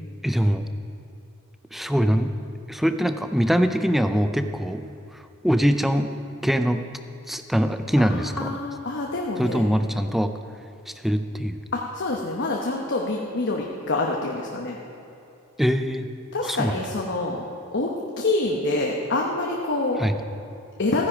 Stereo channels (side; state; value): both; normal; correlation 0.69